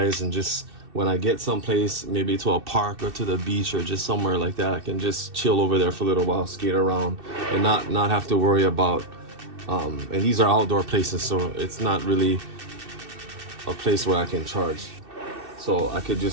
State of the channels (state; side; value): late; left; 2.6 ms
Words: just when I get someplace, maybe to a park or to the beach or just somewhere like that, I can just chill over there for a little while, skate around, and not have to worry about and these are outdoor places, so it's not really a place where I can charge. So I could